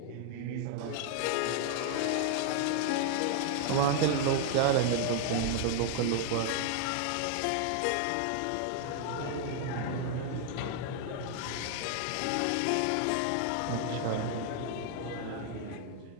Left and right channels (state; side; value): different; both; correlation 0.00